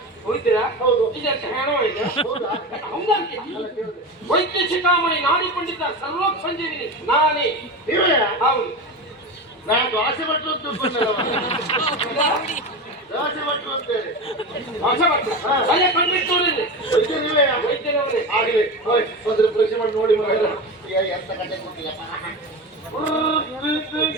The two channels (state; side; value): normal; both; correlation 0.24